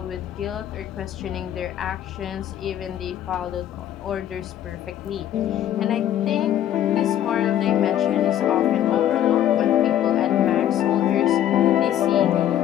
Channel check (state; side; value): quieter; right; 11.4 dB